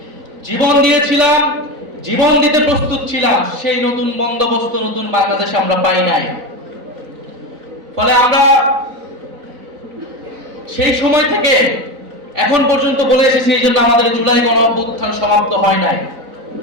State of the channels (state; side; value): late; left; 4.0 ms